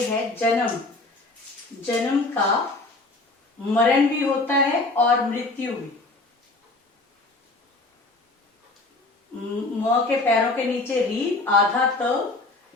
है जन्म। जन्म का मरण भी होता है और मृत्यु भी। म के पैरों के नीचे री, आधा त,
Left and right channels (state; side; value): quieter; right; 3.2 dB